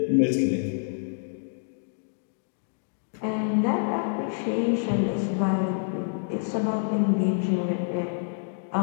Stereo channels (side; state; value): right; silent; digital silence